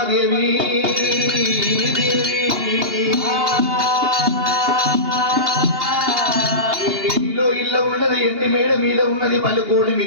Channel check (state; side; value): late; left; 2.8 ms